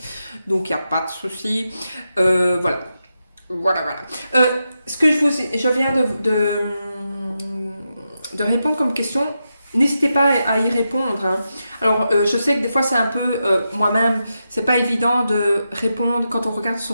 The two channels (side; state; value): both; inverted; correlation -0.87